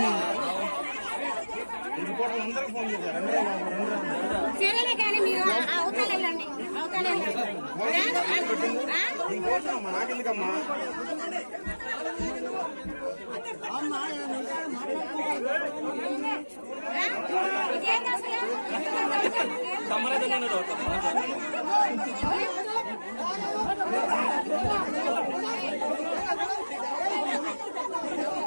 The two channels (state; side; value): inverted; both; correlation -1.00